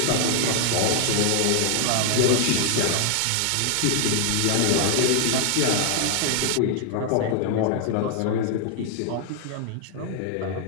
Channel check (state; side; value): different; both; correlation 0.00